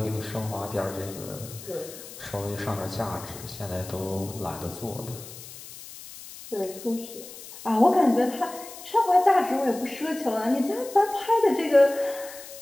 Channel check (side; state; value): left; noise; hiss, 15 dB below the sound